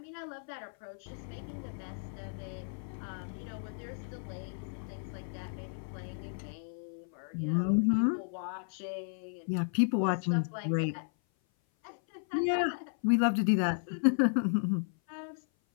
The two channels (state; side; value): silent; right; 55 dB below the other